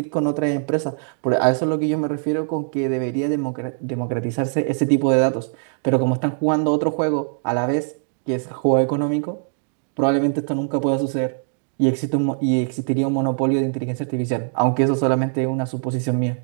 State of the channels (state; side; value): silent; left; digital silence